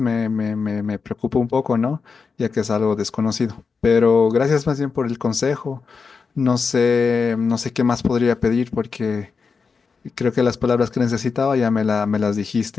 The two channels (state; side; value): quieter; right; 5.1 dB